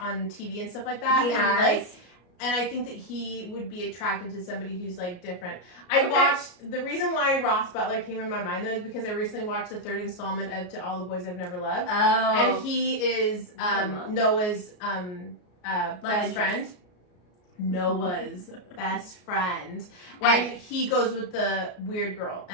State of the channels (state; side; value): late; right; 33 ms